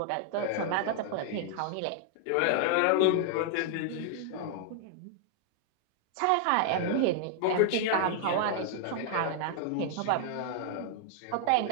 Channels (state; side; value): different; both; correlation 0.00